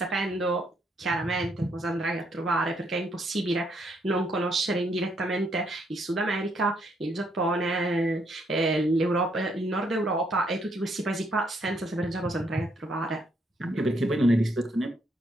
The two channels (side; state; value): both; normal; correlation 0.72